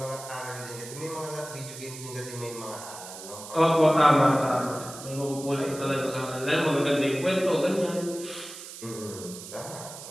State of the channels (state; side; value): noise; right; hiss, 13 dB below the sound